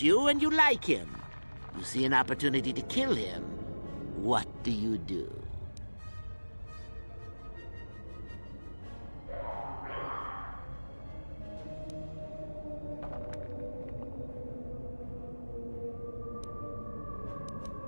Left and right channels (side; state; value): both; inverted; correlation -1.00